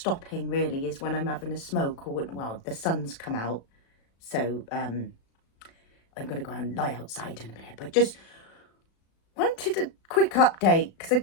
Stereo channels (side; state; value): right; late; 36 ms